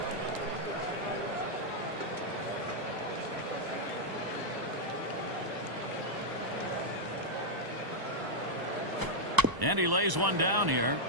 And he lays one down here.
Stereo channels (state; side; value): late; left; 1.0 ms